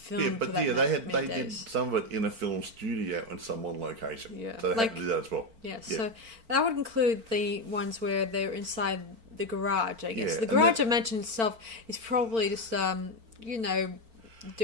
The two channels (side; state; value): left; late; 4.4 ms